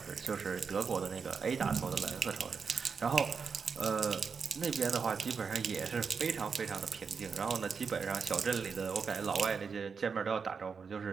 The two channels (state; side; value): quieter; left; 5.7 dB